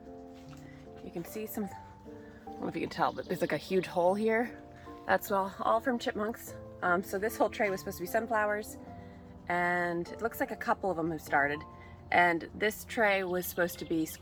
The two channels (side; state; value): both; identical; correlation 1.00